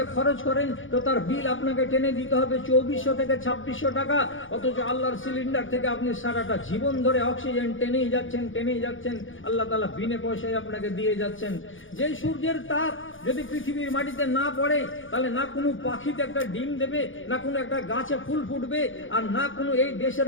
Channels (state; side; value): late; right; 0.57 ms